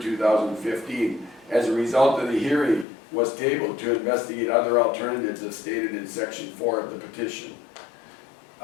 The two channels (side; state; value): right; drops out; at 2.9 s